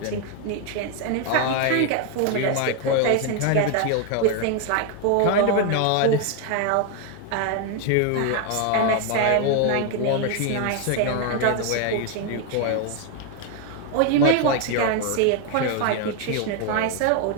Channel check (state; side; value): different; both; correlation 0.01